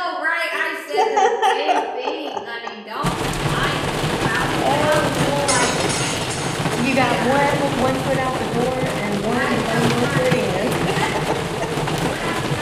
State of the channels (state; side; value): identical; both; correlation 1.00